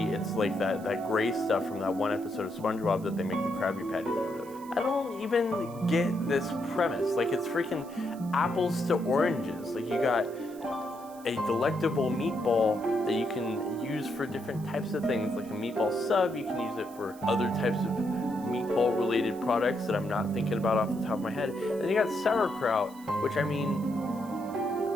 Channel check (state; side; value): noise; right; hiss, 23 dB below the sound